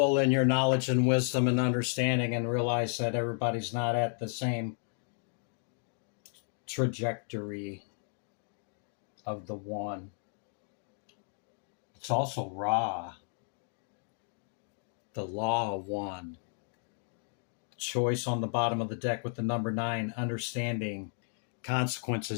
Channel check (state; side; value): silent; right; 56 dB below the other